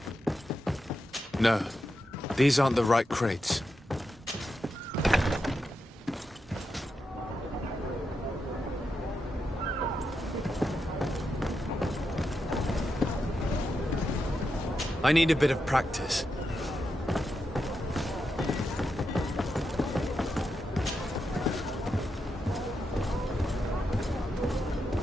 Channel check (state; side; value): normal; both; correlation 0.86